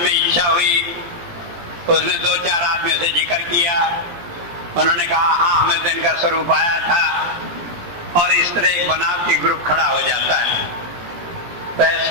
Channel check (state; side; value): late; left; 17 ms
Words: इच्छा हुई, उसने 2-4 आदमियों से जिक्र किया, उन्होंने कहा हाँ हमें तो इनका स्वरूप आया था, और इस तरह एक बनावटी ग्रुप खड़ा हो जाता है। तो